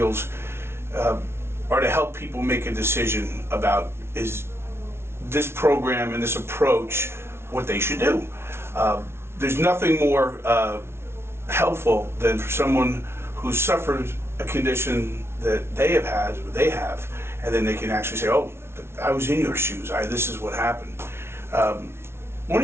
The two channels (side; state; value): left; late; 0.12 ms